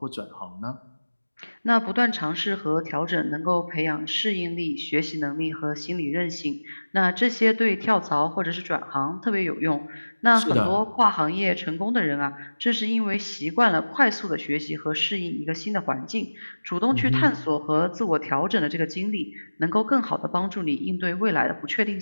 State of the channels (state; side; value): inverted; both; correlation -1.00